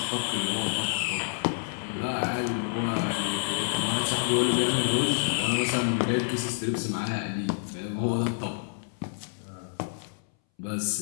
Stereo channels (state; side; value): silent; right; 59 dB below the other